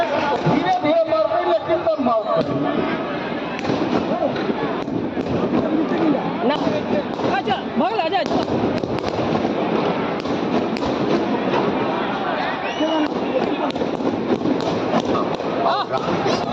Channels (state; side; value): identical; both; correlation 1.00